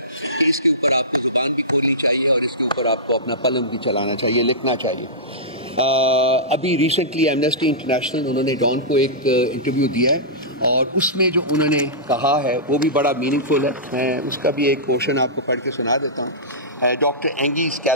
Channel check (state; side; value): normal; both; correlation -0.17